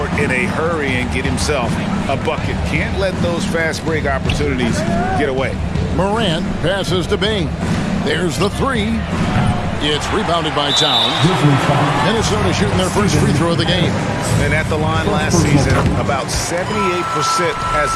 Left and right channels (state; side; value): identical; both; correlation 1.00